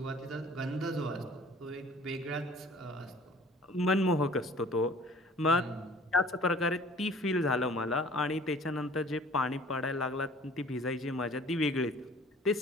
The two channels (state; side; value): normal; both; correlation 0.50